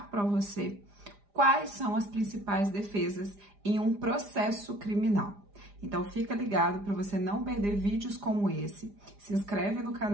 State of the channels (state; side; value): late; left; 4.9 ms